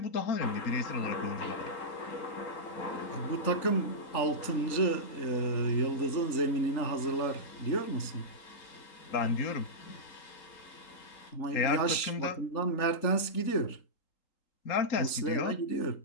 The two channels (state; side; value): late; right; 3.8 ms